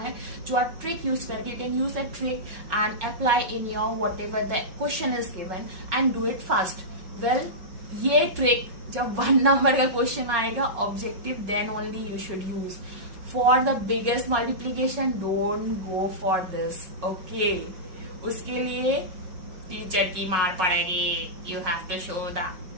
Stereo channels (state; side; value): late; left; 5.5 ms